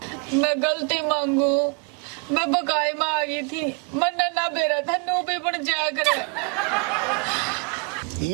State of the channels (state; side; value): quieter; left; 33.7 dB